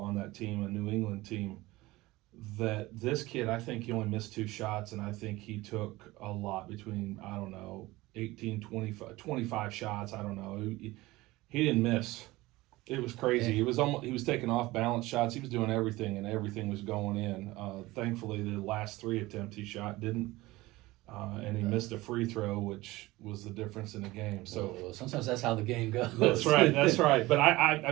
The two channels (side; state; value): left; quieter; 19.5 dB